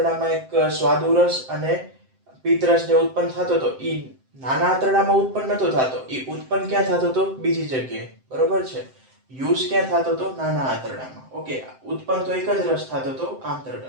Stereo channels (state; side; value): late; left; 7.7 ms